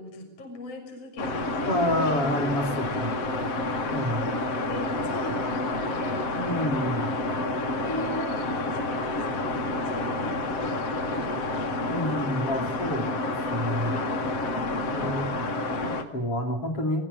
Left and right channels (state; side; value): late; right; 7.1 ms